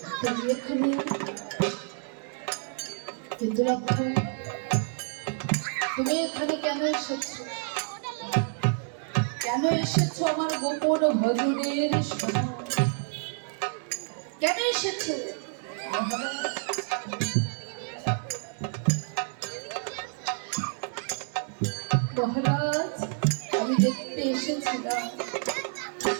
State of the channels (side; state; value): left; silent; 59 dB below the other